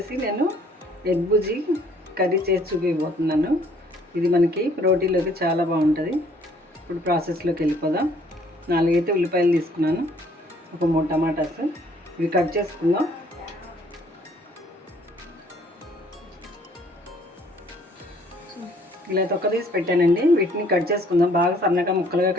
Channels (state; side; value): normal; both; correlation 0.61